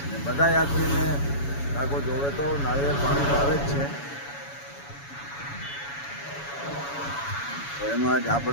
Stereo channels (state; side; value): late; right; 7.1 ms